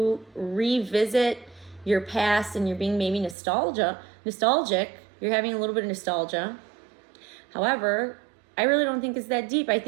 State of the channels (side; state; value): left; drops out; at 3.4 s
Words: revisit your past, and you're being maybe nostalgic. You're having a little bit of nostalgia. However, I really don't think it's that deep. I